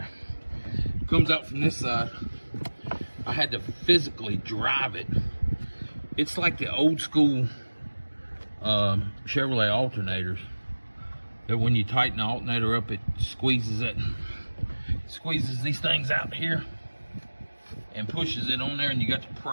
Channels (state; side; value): inverted; both; correlation -1.00